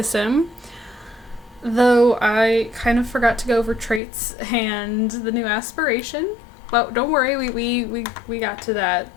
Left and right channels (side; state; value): right; drops out; at 4.0 s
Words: Sim, though I kind of forgot to go over traits and the new aspiration, but don't worry, we got to that